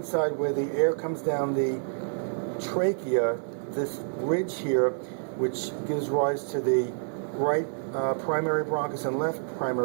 where the air comes down the trachea, this ridge here, which gives rise to the right primary bronchus and left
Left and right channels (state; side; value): silent; left; 59 dB below the other